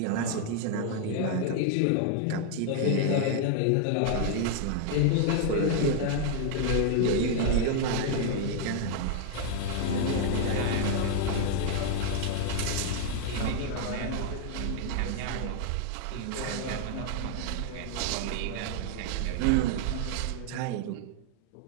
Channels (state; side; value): different; both; correlation 0.00